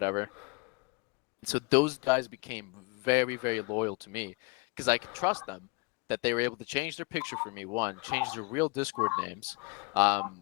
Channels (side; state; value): right; quieter; 29.3 dB